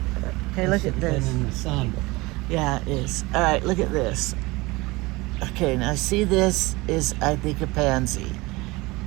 Okay, look at been this. in the sun. Yeah, it is. Alright, look at this. Okay, now see, this is, I think, a pansy.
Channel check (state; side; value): quieter; left; 22.6 dB